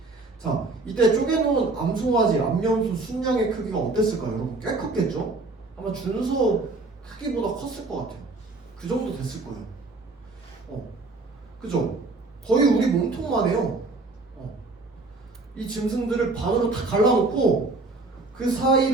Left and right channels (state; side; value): quieter; left; 3.3 dB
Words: 자, 이때 쪼개놓은 암송아지, 암염소 순양의 크기가 어땠을까요? 여러분 꽤 컸겠죠? 아마 준소 크기보다 컸을 것 같아요. 그 정도 됐을 거예요. 그죠? 거의 우리 몸통만 해요. 이 짐승들을 반으로 다 갈라놓고 그